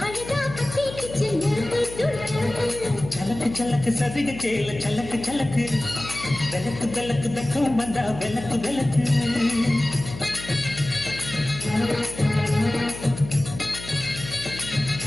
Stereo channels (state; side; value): noise; left; hum, 12 dB below the sound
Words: அழகா பத்தி கிச்சு நெருப்பு தூள் கிளப்பு. சலக்கு சலக்கு சதிக சேல சலக்கு சலக்கு, விளக்கு விளக்கு வெக்கம் வந்தா விளக்கு விளக்கு.